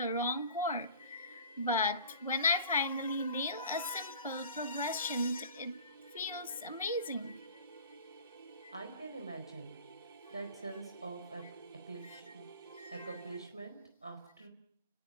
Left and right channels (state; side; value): inverted; both; correlation -0.43